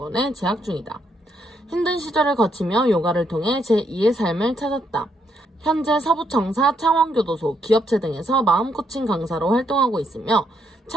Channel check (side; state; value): both; normal; correlation 0.75